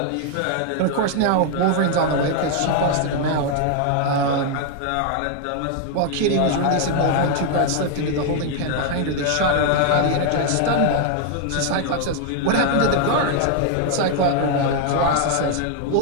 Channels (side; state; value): both; different; correlation 0.00